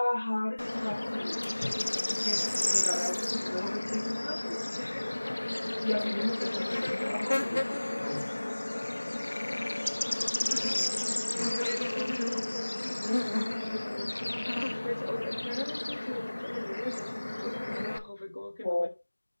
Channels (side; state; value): both; inverted; correlation -1.00